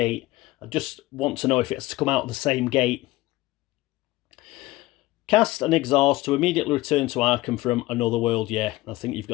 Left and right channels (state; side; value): quieter; right; 18.5 dB